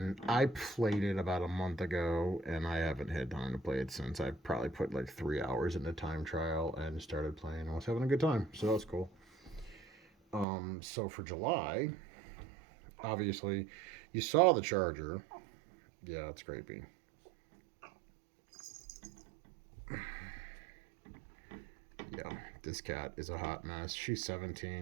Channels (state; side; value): drops out; left; at 10.5 s